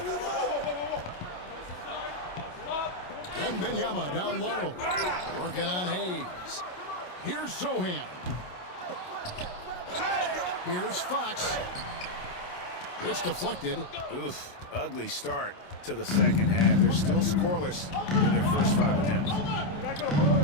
Wembanyama down low. Working on Hayes. Here's Sohan. Here's Fox. It's deflected. Oof, ugly start to the second half. They're still scoreless in their first 5 attempts.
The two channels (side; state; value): right; late; 28 ms